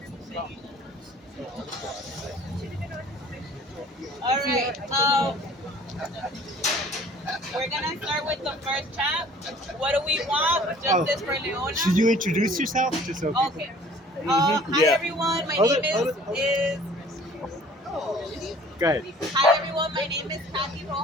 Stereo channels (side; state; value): both; normal; correlation 0.50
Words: All right. We're gonna start with the first chat. What do we want? Justice for Leona. Should you introduce yourself? Just so people. Okay. Hi Yeah. everyone. My Hold name it, hold it, hold it. is Go ahead. Hi everyone, my name is Kathy